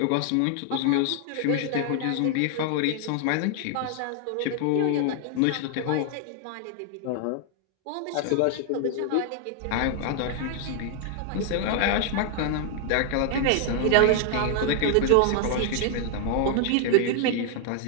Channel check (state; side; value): different; both; correlation 0.00